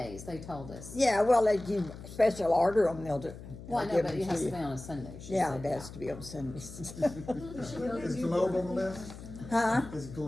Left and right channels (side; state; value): left; noise; hum, 14 dB below the sound